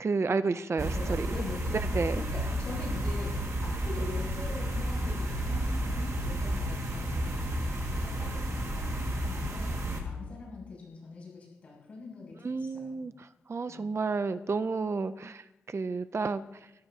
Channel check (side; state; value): both; normal; correlation 0.83